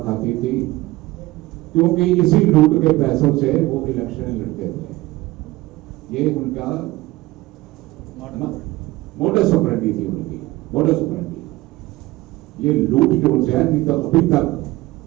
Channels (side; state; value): left; quieter; 19.1 dB